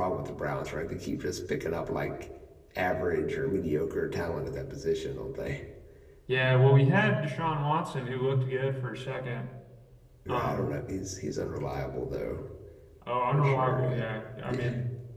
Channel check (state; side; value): identical; both; correlation 1.00